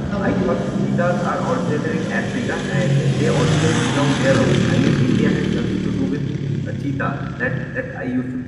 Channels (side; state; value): both; identical; correlation 1.00